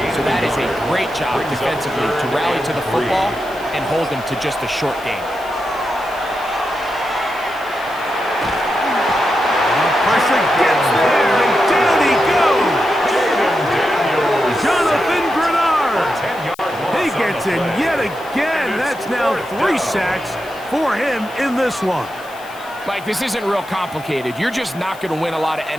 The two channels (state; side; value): noise; left; hiss, 22 dB below the sound